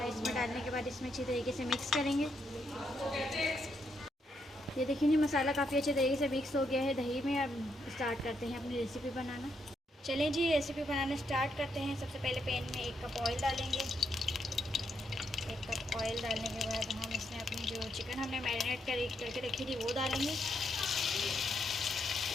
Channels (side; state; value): both; normal; correlation 0.78